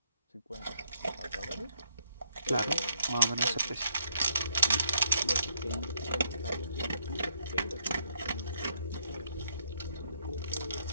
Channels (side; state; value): both; inverted; correlation -0.73